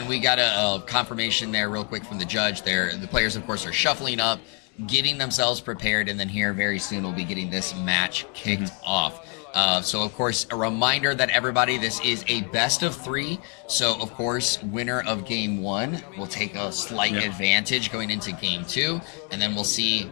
we got a confirmation there real quick from the judge there. The players, of course, are shuffling up, getting themselves prepared, and then here very soon we'll be getting this match kicked off. So, of course, a reminder that everybody, this is a best of 3. So, of course, winner of Game 1 will take a slight advantage going into Game 2. And then we'll see,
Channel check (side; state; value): right; quieter; 37.5 dB